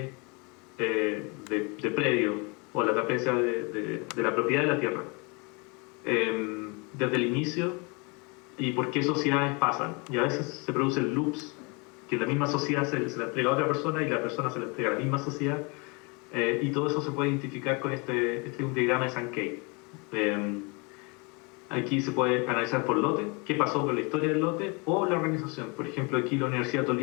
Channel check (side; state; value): right; quieter; 30.5 dB